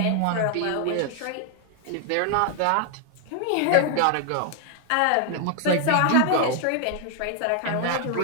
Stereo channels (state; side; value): different; both; correlation 0.00